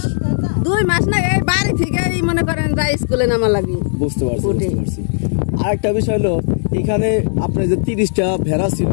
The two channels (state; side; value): silent; right; digital silence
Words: না, এই বাড়ি থেকে মনে করেন যাই স্কুলে নামা লাগি। বুঝতে পারছি। আরেকটা বিষয় হলো, এখানে আপনার যে 30টা ভেড়া ছিল,